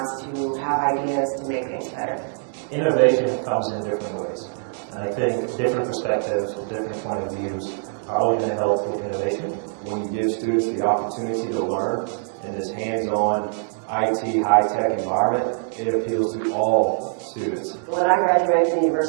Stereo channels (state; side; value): silent; left; digital silence